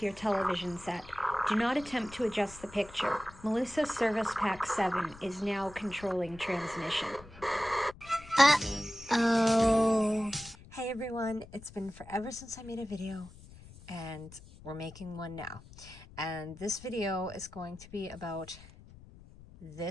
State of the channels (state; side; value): noise; left; rumble, 19 dB below the sound